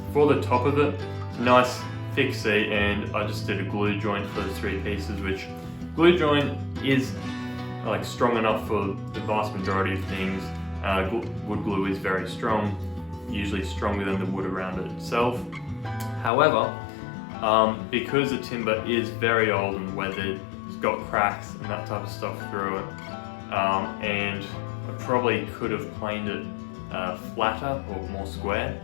for the top of it, nice thick seat, and I just did a glue joint for those 3 pieces, which glue joint is like strong enough for the vast majority of things. Wood glue is very strong, usually stronger than the wood around it itself. However, because the timber is very old and weathered, it's got cracks and that type of stuff through it, and I probably could have planed it flatter or more square,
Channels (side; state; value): right; drops out; at 16.3 s